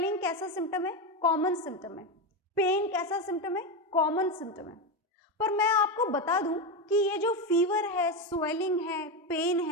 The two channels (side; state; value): both; normal; correlation 0.13